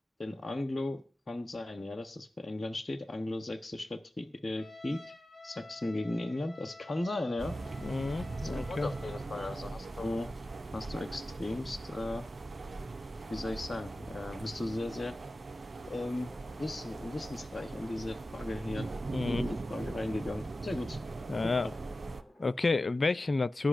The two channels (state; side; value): normal; both; correlation 0.95